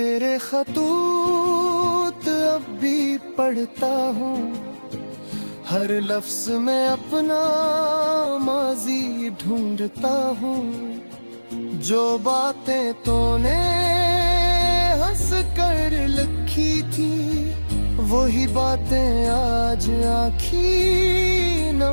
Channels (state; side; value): inverted; both; correlation -1.00